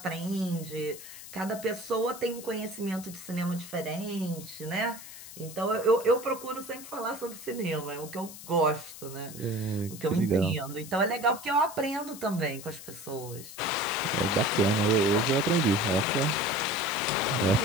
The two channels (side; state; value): left; noise; hiss, 14 dB below the sound